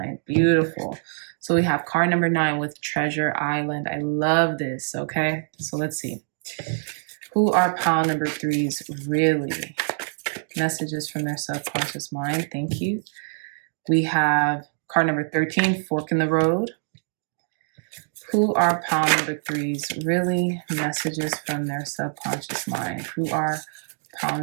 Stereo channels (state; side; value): silent; left; digital silence